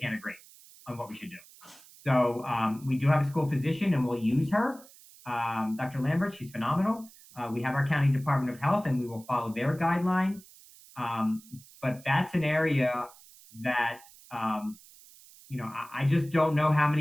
agree on what we should do. So we do have a school physician, and we'll use her, Dr. Lambert. She's phenomenal. We have our county Department of Health, and we will follow their guidelines. But that's an area that I just don't know how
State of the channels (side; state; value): right; noise; hiss, 23 dB below the sound